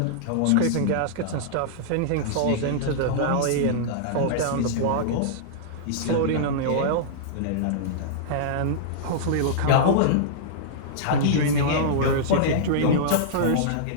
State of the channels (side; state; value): both; different; correlation -0.02